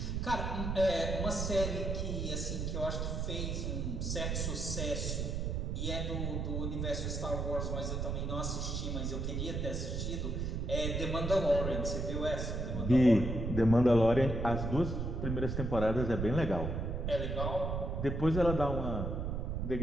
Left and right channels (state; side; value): noise; right; rumble, 2 dB below the sound